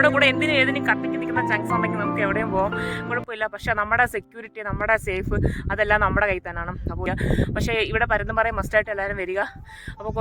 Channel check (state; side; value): identical; both; correlation 1.00